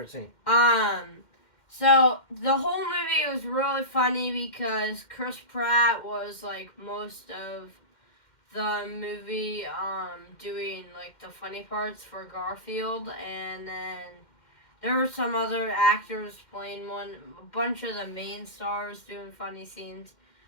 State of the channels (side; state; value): right; late; 2.1 ms